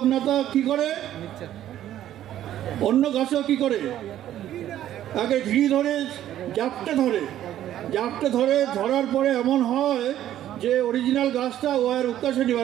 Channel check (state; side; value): quieter; left; 12.1 dB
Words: কি করে? অন্য গাছও কি করে? আগে ঘিরি ধরে জাপটে ধরে, ধরার পরে এমন হয় যে অরিজিনাল গাছটা ও আর উৎকাশে